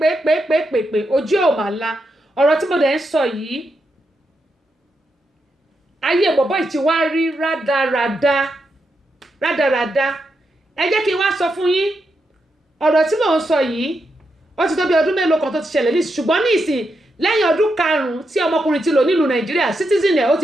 pè ojú ò mà la ọ̀rọ̀ tí mo dẹ̀ ń sọ yìí ayé bọ̀bọ̀ yìí ti wá rí rádaràda ẹ jẹ́ kí n wá sọ fún yín ọ̀rọ̀ tí mò ń sọ yìí ó ti tó bí ọdún mélòó kan tó ti ṣẹlẹ̀ ní ṣùgbọ́n ní ìsìn lẹ́yìn ọdún 5 tí ọmọkùnrin ti lò nílùú Nàìjíríà citizen ẹ̀ ó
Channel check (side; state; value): both; normal; correlation 0.84